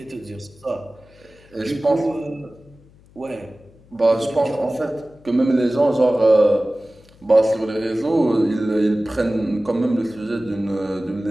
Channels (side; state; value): left; noise; hum, 27 dB below the sound